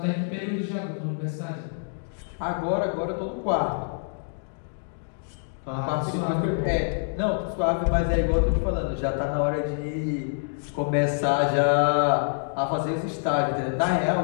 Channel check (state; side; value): silent; right; digital silence